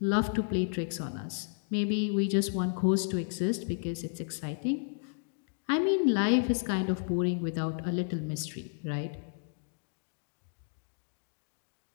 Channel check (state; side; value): silent; right; digital silence